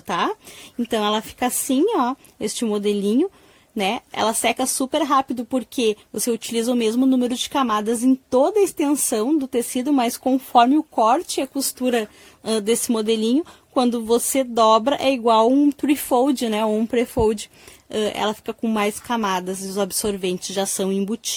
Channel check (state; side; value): identical; both; correlation 1.00